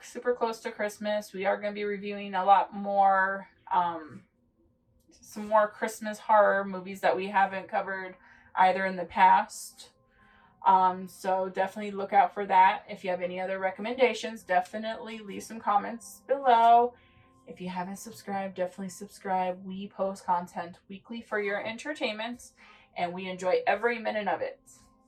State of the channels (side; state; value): both; identical; correlation 1.00